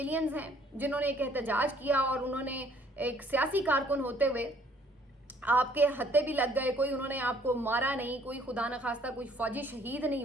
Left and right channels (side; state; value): both; normal; correlation 0.60